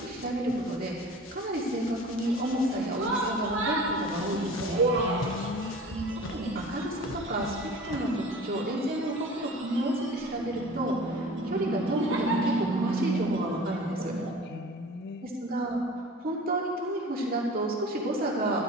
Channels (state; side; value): normal; both; correlation 0.41